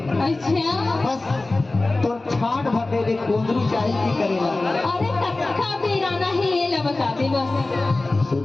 अच्छा बस तो छाट भटे दे कुंदरू चाही की करेला अरे कक्का बेराना है ये ला बता दे बस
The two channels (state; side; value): quieter; right; 3.1 dB